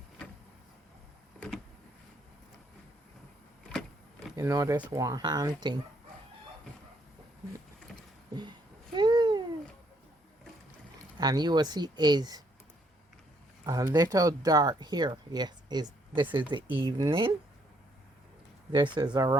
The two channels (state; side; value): normal; both; correlation 0.70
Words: You know this one hand thing. And you will see is a little dark here. Yes, this is the evening. This is